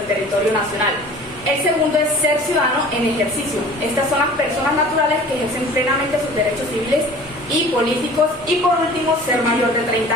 territorio nacional. El segundo es ser ciudadano en ejercicio. Estas son las personas naturales que ejercen plenamente sus derechos civiles y políticos. Y por último, ser mayor de 30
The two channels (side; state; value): both; normal; correlation 0.45